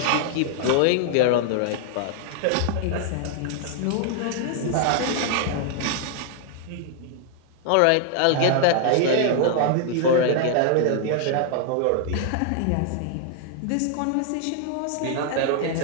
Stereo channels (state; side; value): different; both; correlation 0.00